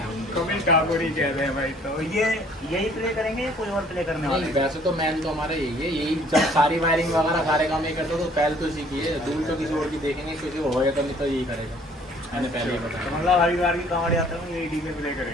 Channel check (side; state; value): both; normal; correlation 0.57